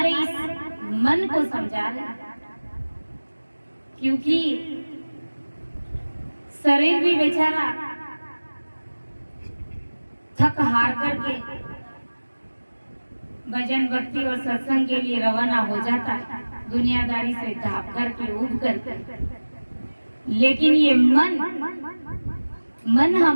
इस मन को समझा रहे। क्योंकि शरीर भी बेचारा थक हार करके भजन भक्ति और सत्संग के लिए रवाना हो जाता है, दुनियादारी से ढाप करके उठ करके। लेकिन ये मन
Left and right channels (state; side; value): inverted; both; correlation -1.00